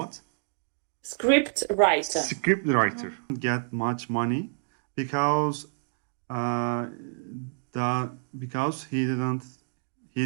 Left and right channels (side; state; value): left; silent; digital silence